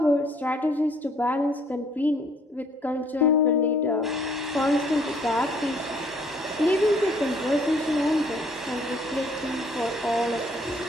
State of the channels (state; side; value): normal; both; correlation 0.61